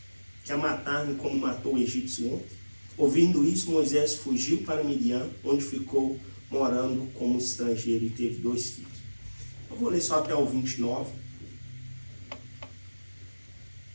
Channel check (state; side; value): inverted; both; correlation -1.00